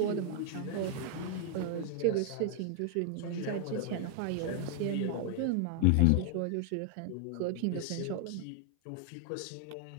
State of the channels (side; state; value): both; different; correlation 0.01